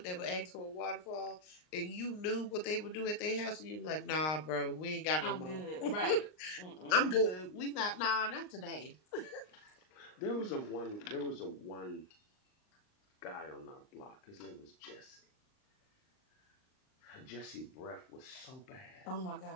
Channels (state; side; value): late; right; 38 ms